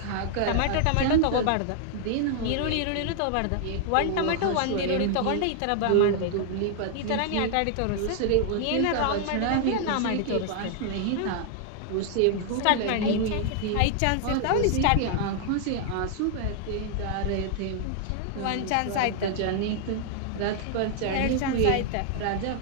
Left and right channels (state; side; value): different; both; correlation 0.00